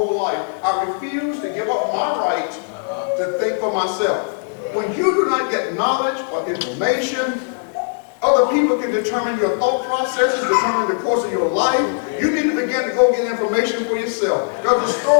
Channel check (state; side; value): silent; right; 66 dB below the other